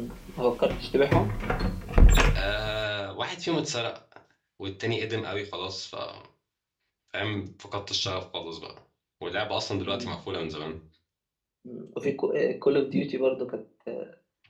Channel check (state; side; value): identical; both; correlation 1.00